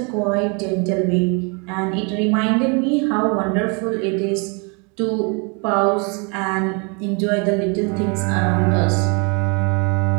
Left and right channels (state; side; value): quieter; left; 33.4 dB